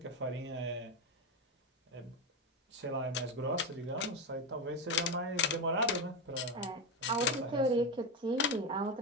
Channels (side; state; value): both; normal; correlation 0.14